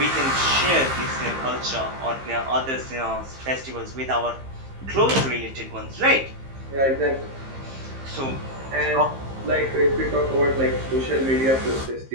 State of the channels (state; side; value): late; left; 15 ms